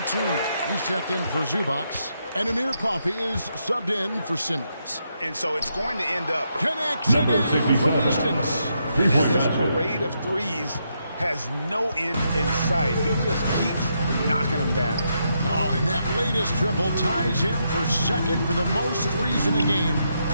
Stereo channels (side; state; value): both; inverted; correlation -0.80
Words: he's checked in for Zubac. And Amir Coffey is subbed in for Simmons. And so it's going to end up connects again from distance. And this parade of threes has no end in sight. He just keeps knocking them down. Oh, and that latest triple ties him for second for the most threes in a game.